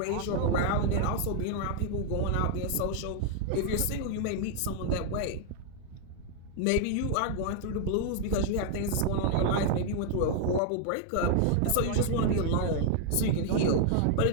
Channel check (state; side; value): different; both; correlation 0.00